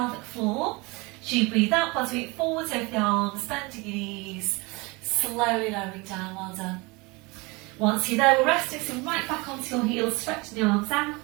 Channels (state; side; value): quieter; left; 25.9 dB